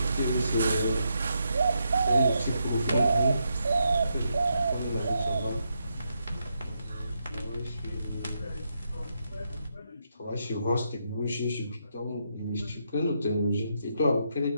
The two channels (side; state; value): both; inverted; correlation -0.81